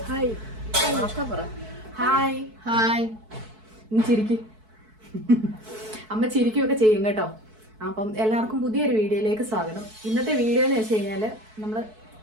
hi hi ഇനി ചിരിക്കും. അമ്മ ചിരിക്കുകയൊക്കെ ചെയ്യും കേട്ടോ. അപ്പം എല്ലാവർക്കും പുതിയൊരു വീഡിയോയിലേക്ക് സ്വാഗതം. ഇന്നത്തെ വീഡിയോ എന്ന് വെച്ച് കഴിഞ്ഞാൽ നമ്മൾ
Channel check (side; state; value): left; late; 4.6 ms